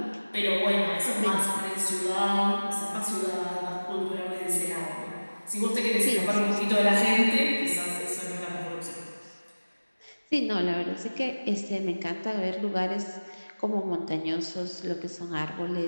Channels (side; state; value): both; inverted; correlation -1.00